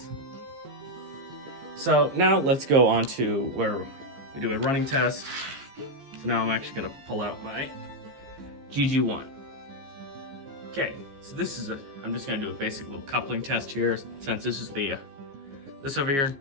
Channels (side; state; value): left; late; 15 ms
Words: So now let's go on to where we do a running test. So now I'm actually gonna pull out my GG1. Okay, so I'm just gonna do a basic little coupling test here, since this is this over here,